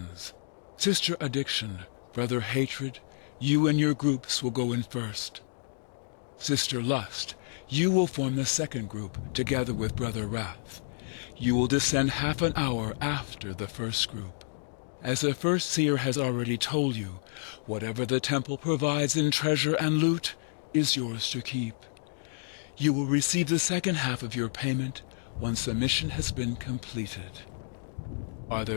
Sister Addiction, Brother Hatred, you and your groups will go in first. Sister Lust, you will form the second group together with Brother Wrath. You will descend half an hour after the first group. As the first seer has already told you, whatever the temple provides in treasure and loot is yours to keep. You will receive the second half of your payment once the mission has been completed. Are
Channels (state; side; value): silent; right; digital silence